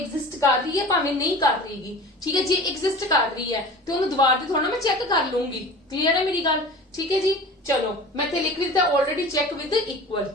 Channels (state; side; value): normal; both; correlation 0.39